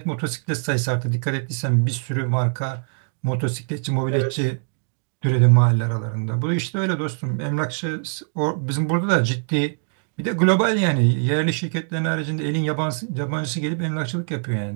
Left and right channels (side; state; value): left; silent; 64 dB below the other